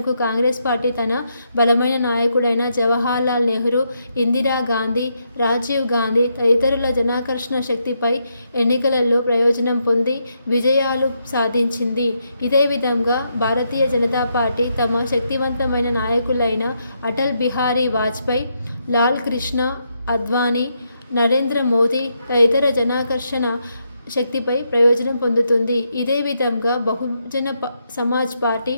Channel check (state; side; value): inverted; both; correlation -0.80